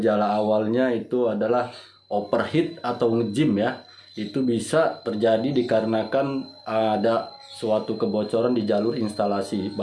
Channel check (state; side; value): identical; both; correlation 1.00